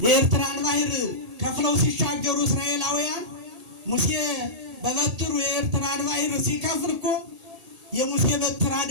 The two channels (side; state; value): left; late; 1.8 ms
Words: የኤርትራን ባህር ከፍለው ሲሻገሩ እስራኤላውያን ሙሴ በበትሩ የኤርትራን ባህር ሲከፍል እኮ የሙሴ በትር